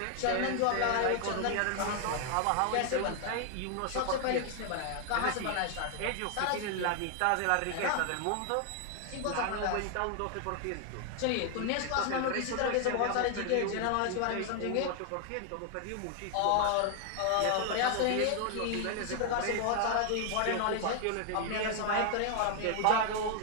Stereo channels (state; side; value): different; both; correlation 0.00